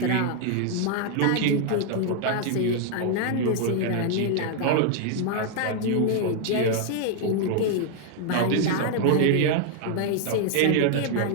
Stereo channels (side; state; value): both; different; correlation 0.00